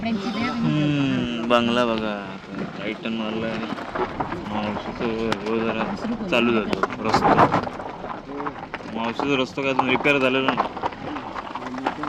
बंगला बघा टायटन मारलाय. मावशीचं जरा चालू जातो रस्ता. मावशीचा रस्ता काय अजून रिपेअर झालेला नाही.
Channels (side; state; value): both; identical; correlation 1.00